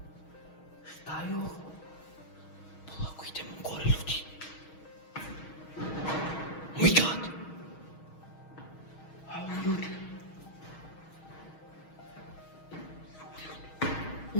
Šta je ovo? Polako idemo gore, ljudi. My God. A ovo, ljudi.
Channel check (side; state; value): right; late; 6.4 ms